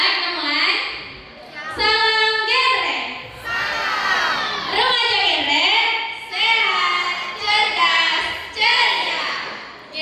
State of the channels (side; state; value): both; identical; correlation 1.00